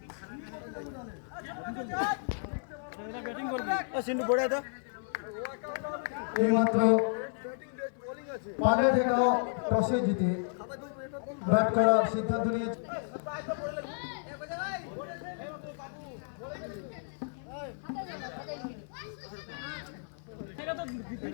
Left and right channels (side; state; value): right; silent; 56 dB below the other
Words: ব্যাটিং করবে। সিন্টু পড়ে দাও। এইমাত্র পালে থেকেও টসে জিতে ব্যাট করার সিদ্ধান্ত নিয়েছে।